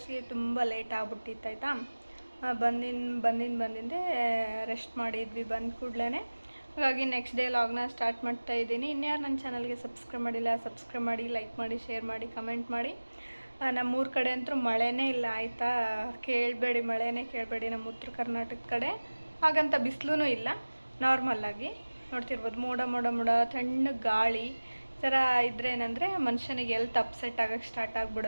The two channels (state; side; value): inverted; both; correlation -1.00